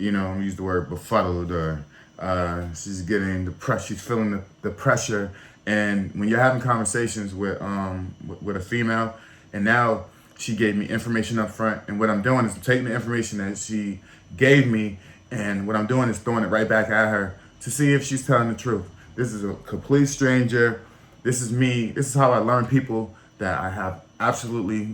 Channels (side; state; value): both; identical; correlation 1.00